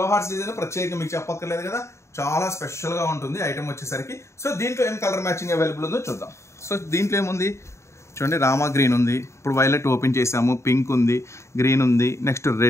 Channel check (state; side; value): late; right; 0.14 ms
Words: hearts design ప్రత్యేకంగా మీకు చెప్పక్కర్లేదు కదా, చాలా స్పెషల్ గా ఉంటుంది ఐటమ్ వచ్చేసరికి. సో దీంట్లో ఏం కలర్ మ్యాచింగ్ అవైలబుల్ ఉందో చూద్దాం. సో దీంట్లో ఏముంది చూడండి, రామా గ్రీన్ ఉంది, ఇప్పుడు వైలెట్ ఓపెన్ చేసాము, పింక్ ఉంది, గ్రీన్ ఉంది, నెక్స్ట్